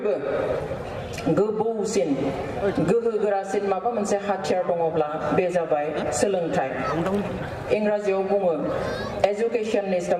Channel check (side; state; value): both; identical; correlation 1.00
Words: गोबौसिन गोहोगोरासिन माबा मोनसे हाथियार दङब्ला बे जाबाय सोलोंथाइ इंराजियाव बुङो education is the